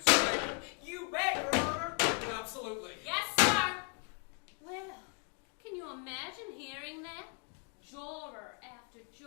You bet, Your Honor. Absolutely. Yes, sir. Well, can you imagine hearing that? Juror after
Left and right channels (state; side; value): quieter; right; 36.7 dB